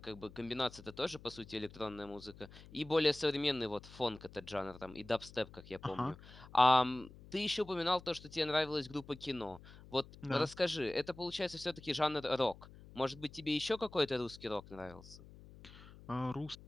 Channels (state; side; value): noise; left; hum, 19 dB below the sound